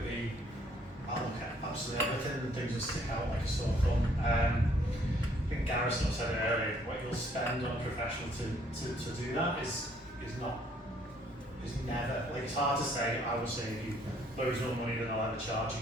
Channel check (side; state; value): both; normal; correlation 0.64